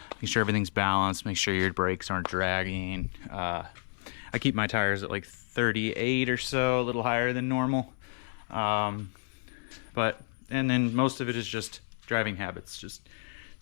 make sure everything's balanced, make sure your brakes aren't dragging. I keep my tires at like 38 or so, a little higher than normal. And then most of it is just driving habits, just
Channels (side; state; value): right; silent; 57 dB below the other